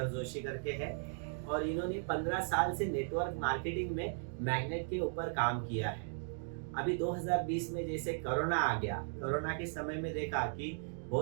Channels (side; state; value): left; silent; digital silence